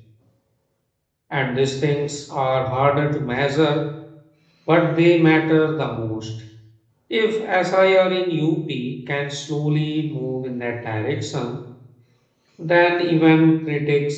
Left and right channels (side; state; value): both; identical; correlation 1.00